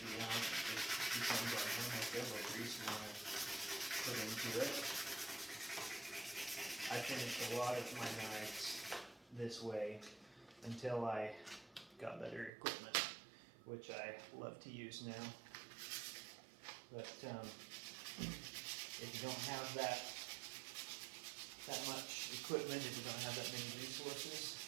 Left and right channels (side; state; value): left; drops out; at 12.5 s